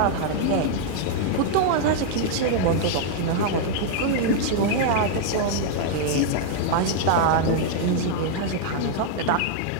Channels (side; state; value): both; different; correlation -0.01